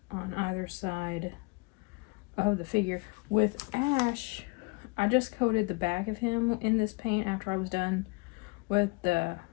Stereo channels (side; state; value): right; quieter; 28.1 dB